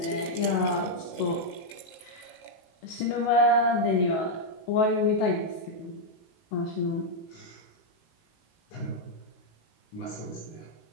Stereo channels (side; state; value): right; late; 19 ms